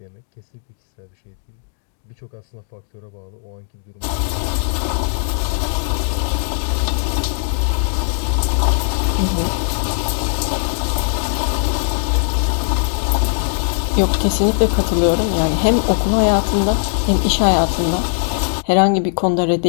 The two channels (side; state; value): right; silent; digital silence